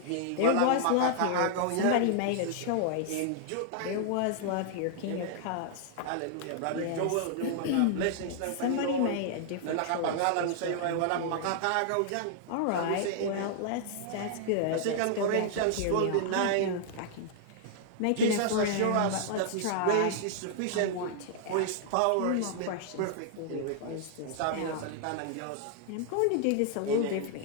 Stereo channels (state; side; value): different; both; correlation -0.01